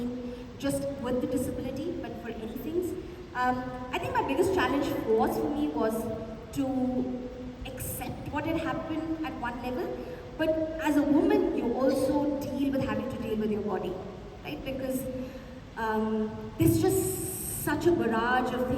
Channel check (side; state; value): both; identical; correlation 1.00